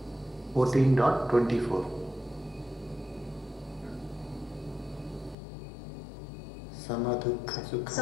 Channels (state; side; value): drops out; right; at 5.4 s